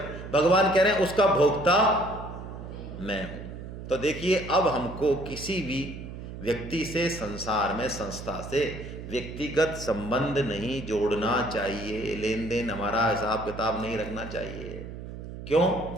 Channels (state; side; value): noise; right; hum, 10 dB below the sound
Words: भगवान कह रहे हैं उसका भोक्ता मैं हूं। तो देखिए, अब हमको किसी भी व्यक्ति से, संसार में संस्था से व्यक्तिगत संबंध नहीं जोड़ना चाहिए, लेन देन हमारा हिसाब किताब नहीं रखना चाहिए। क्यों?